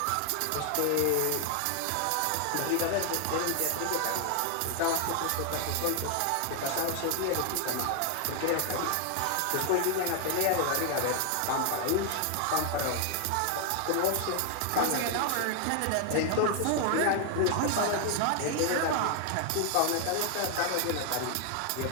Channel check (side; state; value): both; different; correlation 0.00